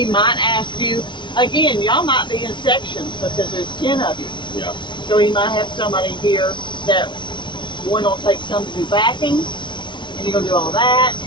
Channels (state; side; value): late; right; 0.23 ms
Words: might ask you, again, y'all might be in sections because there's 10 of you. Yeah. So he might have somebody here that one will take some to do backing, and you're going to do all that,